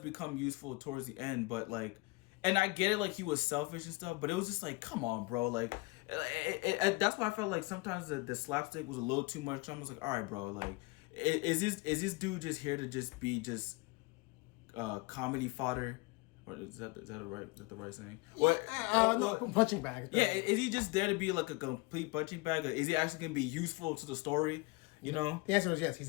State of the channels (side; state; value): right; quieter; 24.6 dB